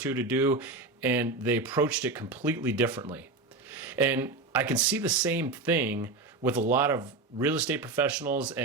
to do, and they approached it completely differently. And I can see the same thing with a lot of real estate professionals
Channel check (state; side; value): quieter; left; 3.6 dB